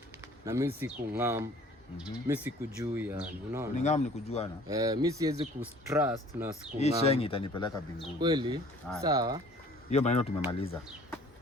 na mimi sikung'am. Mimi sikujui yani, unaona? Ni ng'am ni kujuana. Mimi siwezi kutrust na sikung'am. Hii shengi itanipeleka mbinguni. Kweli? Sawa. Hiyo maneno tumemaliza.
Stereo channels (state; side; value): normal; both; correlation 0.52